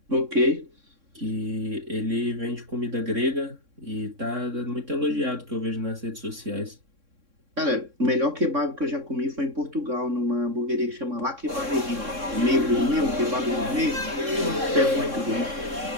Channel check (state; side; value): late; left; 3.6 ms